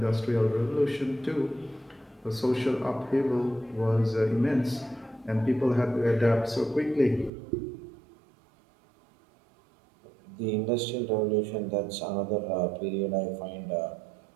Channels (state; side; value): drops out; left; at 7.3 s